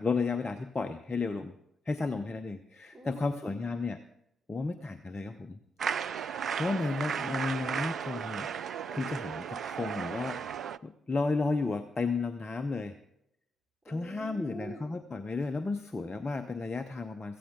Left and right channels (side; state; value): both; normal; correlation 0.83